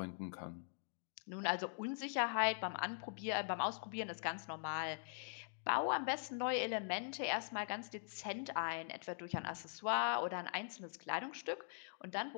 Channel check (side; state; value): right; silent; digital silence